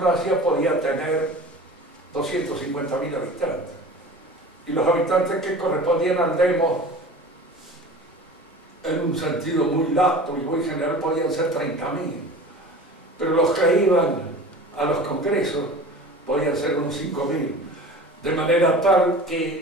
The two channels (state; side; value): normal; both; correlation 0.38